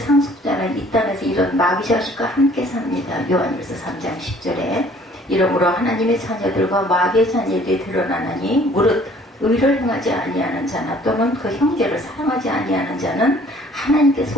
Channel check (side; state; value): both; normal; correlation 0.56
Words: 이 땅에서 이런 마귀 자식과 함께 삽니다. 요한일서 3장 10절에 이러므로 하나님의 자녀들과 마귀의 자녀들이 드러나나니 무릇 의를 행하지 아니하는 자나 또는 그 형제를 사랑하지 아니하는 자는 하나님께